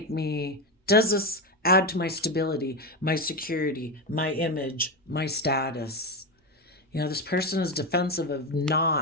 add to my stability, my security, my image, my status? You know, this person is defensive of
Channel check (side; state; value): both; normal; correlation 0.13